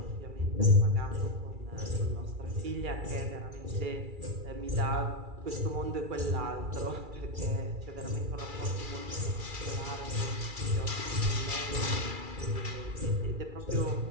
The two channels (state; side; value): late; left; 2.3 ms